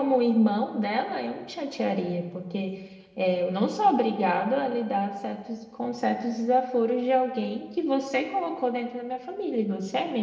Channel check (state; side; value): identical; both; correlation 1.00